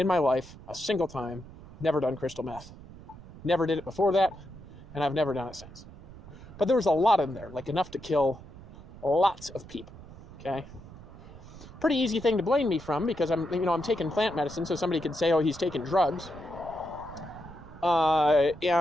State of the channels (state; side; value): noise; right; rumble, 17 dB below the sound